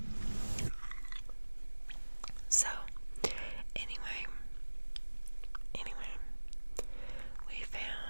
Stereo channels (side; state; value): both; inverted; correlation -1.00